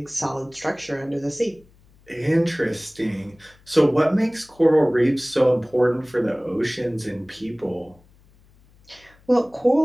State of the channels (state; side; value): noise; left; hum, 29 dB below the sound